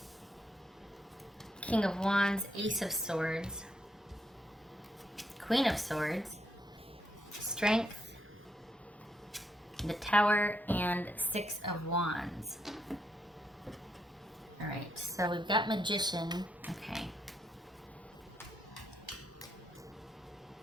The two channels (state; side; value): normal; both; correlation 0.78